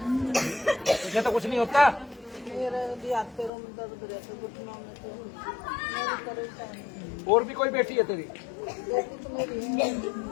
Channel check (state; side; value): drops out; right; at 3.5 s